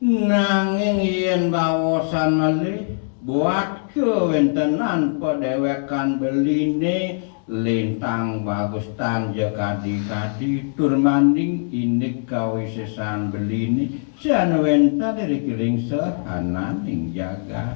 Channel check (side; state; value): right; silent; digital silence